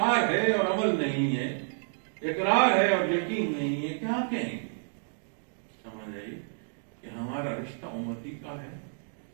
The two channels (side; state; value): left; silent; digital silence